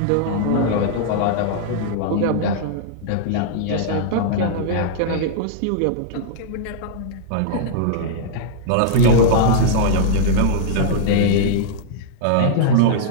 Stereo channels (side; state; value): both; different; correlation -0.02